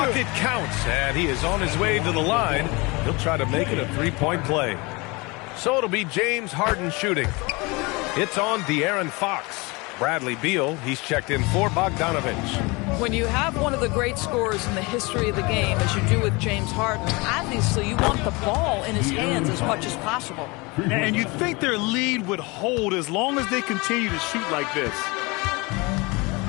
counts, and he is on his way to the line. He'll try to make it a three-point play. So it'll be James Harden shooting. It's on De'Aaron Fox. Bradley Beal, he's checked in for Bogdanovich. When you have one of the great scorers in the history of the game, as you do with James Harden, obviously you want the ball in his hands as much as possible. And you'd think their lead would hold as long as they continue to shoot like this.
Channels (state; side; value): quieter; right; 26.0 dB